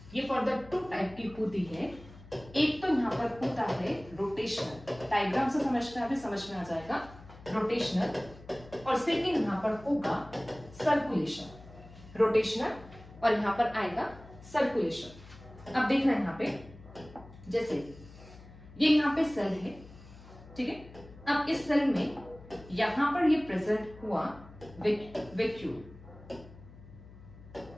ये फर्दर टू टाइप की होती है। एक तो यहाँ पर होता है रोटेशनल, डायग्राम से समझना है, अभी समझ में आ जाएगा, रोटेशनल। और सेकेंड यहाँ पर होगा सर्कुलेशन, रोटेशनल और यहाँ पर आएगा सर्कुलेशन। अब देखना है यहाँ पे, जैसे ये यहाँ पे सेल है, ठीक है। अब इस सेल में यहां पर ये प्रेजेंट हुआ वैक्यूल,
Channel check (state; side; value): noise; left; hum, 19 dB below the sound